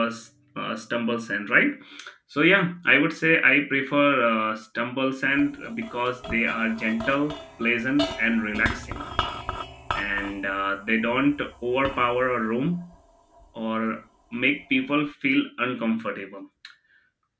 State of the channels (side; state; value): both; identical; correlation 1.00